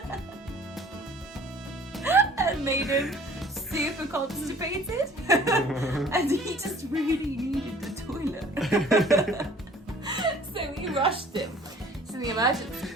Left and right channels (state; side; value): normal; both; correlation 0.52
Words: and made him super constipated. And he just really needed the toilet. So we rushed him to the emergency